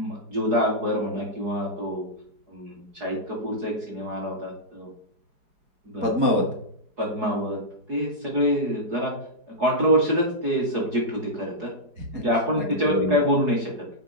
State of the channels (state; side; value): late; left; 4.8 ms